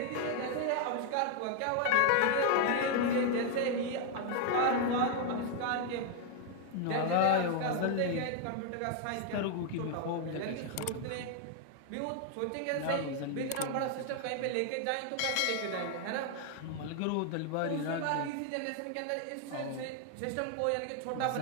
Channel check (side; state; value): both; different; correlation 0.00